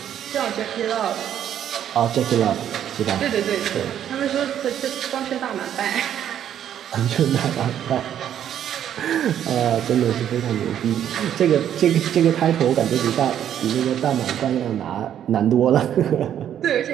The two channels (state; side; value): quieter; left; 10.1 dB